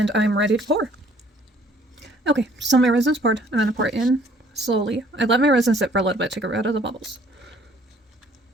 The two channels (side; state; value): both; normal; correlation 0.59